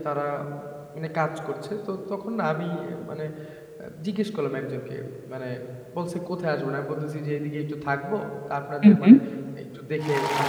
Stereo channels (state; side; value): identical; both; correlation 1.00